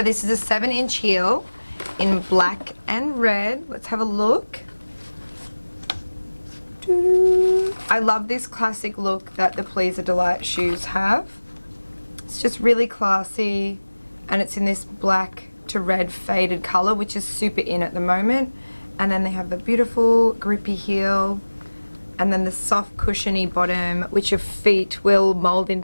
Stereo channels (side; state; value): both; inverted; correlation -1.00